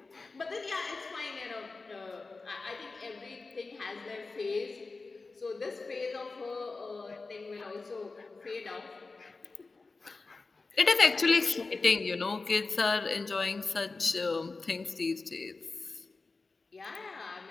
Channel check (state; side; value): quieter; right; 3.8 dB